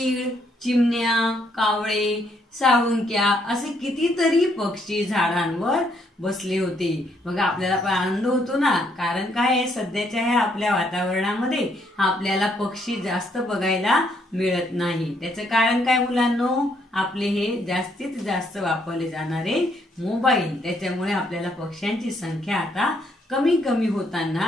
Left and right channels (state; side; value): normal; both; correlation 0.72